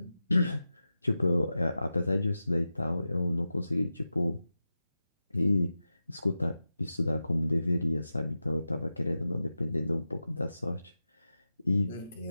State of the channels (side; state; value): both; inverted; correlation -0.92